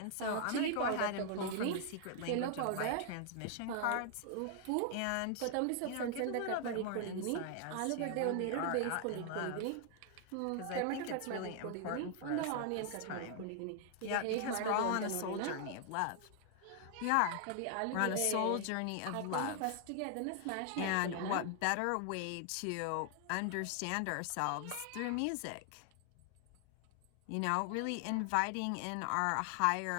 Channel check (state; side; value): different; both; correlation 0.00